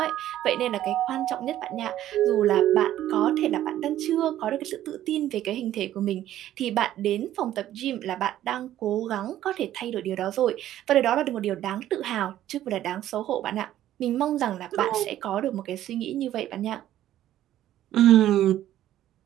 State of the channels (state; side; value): quieter; left; 12.7 dB